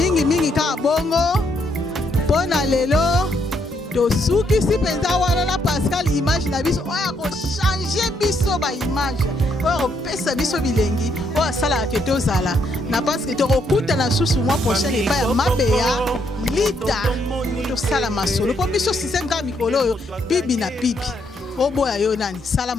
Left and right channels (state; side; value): normal; both; correlation 0.74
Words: ka bongo pona lelo to suki si penza wana na Pascal image na biso oya ko changer biso ba image oya ko pesa biso bilengi oya sala ke tozala na parce que to kokuta na susu mois prochain et pas mabeya lita to sala masolo po biso système ka mikolo yo pibi na pibi oboya yo nani sala